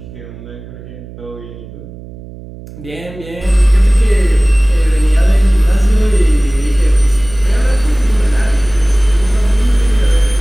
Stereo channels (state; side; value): noise; right; hum, 16 dB below the sound